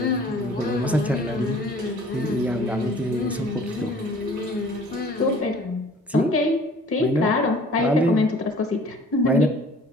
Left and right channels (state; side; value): normal; both; correlation 0.51